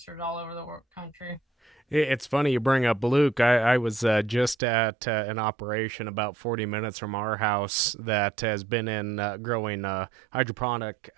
all over the country. It's funny you bring up Luke. I was just at an operation about 40 minutes from our house that has been in growing hydroponic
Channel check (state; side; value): drops out; left; at 4.5 s